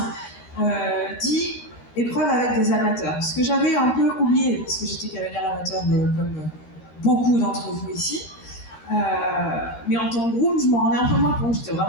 dit épreuve avec des amateurs. Ce que j'avais un peu oublié, parce que j'étais cavalière amateur comme beaucoup d'entre vous ici. Mais en tant que groom, je m'en rendais un peu moins compte. J'étais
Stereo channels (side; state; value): right; late; 13 ms